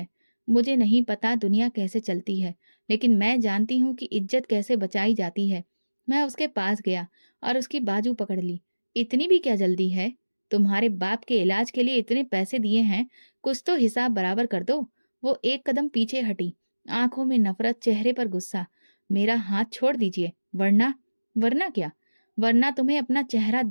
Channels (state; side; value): inverted; both; correlation -1.00